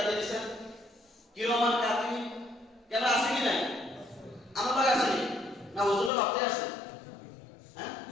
দিয়েছেন, কিরমান কাতি ক্যামেরা আছে কি নাই? আমার কাছে আছে না? হুজুরের বাপতে আছে? হ্যাঁ,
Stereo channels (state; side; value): drops out; right; at 6.1 s